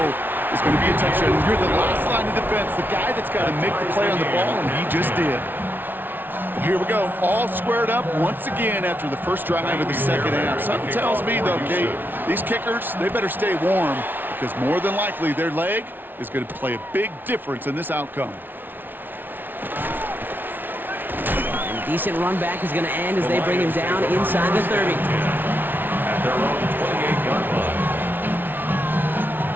is going to be a touchdown. You're the last line of defense, the guy that's got to make the play on the ball, and he just did. Here we go, all squared up once again after the first drive of the second half. Something tells me, though, Kate, these kickers, they better stay warm because more than likely their leg is going to play a big difference in this outcome. And a decent run back is going to end as they bring him down inside the 30. At their own 28-yard line.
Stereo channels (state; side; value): late; left; 0.093 ms